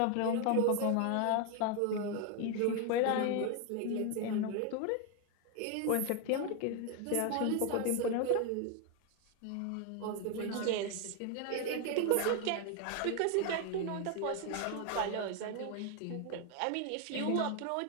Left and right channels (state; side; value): different; both; correlation 0.01